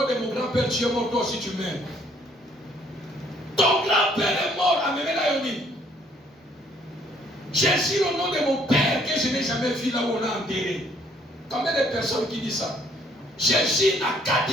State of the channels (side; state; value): both; normal; correlation 0.65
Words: de mon grand-père, tu es mort, toi aussi tu meurs. Ton grand-père est mort, Amémé Layoni. J'ai juré au nom de mon père que je n'ai jamais vu là où on l'a enterré. Combien de personnes qui disent ça? J'ai juré à